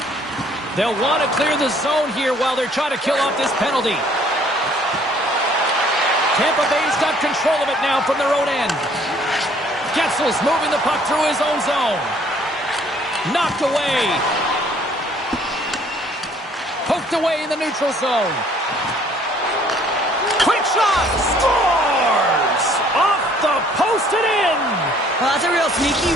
They'll want to clear the zone here while they're trying to kill off this penalty. Tampa Bay's got control of it now from their own end. Getzel's moving the puck through his own zone. Knocked away. Poked away in the neutral zone. Quick shot. Scores! Off the post and in. Well, that's a real sneaky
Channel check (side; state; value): both; normal; correlation 0.59